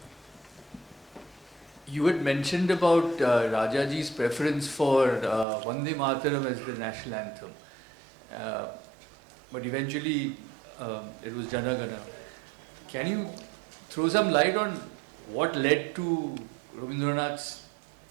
You had mentioned about Rajaji's preference for Vande Mataram as the national anthem. But eventually it was Jana Gana. Can you throw some light on what led to Rabindranath's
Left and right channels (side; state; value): left; drops out; at 5.5 s